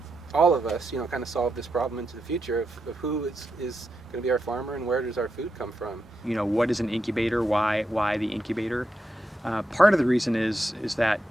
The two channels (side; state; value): both; normal; correlation 0.85